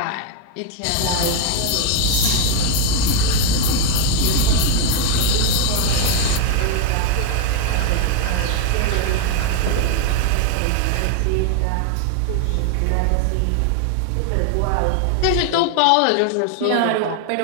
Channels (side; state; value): both; different; correlation 0.00